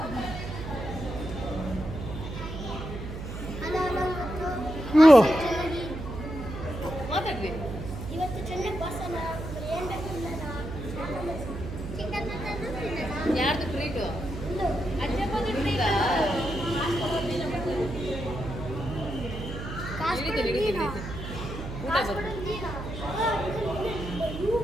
ಮಾತಾಡ್ರಿ. ಯಾರ್ದು ಟ್ರೀಟು?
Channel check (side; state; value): right; noise; hum, 8 dB below the sound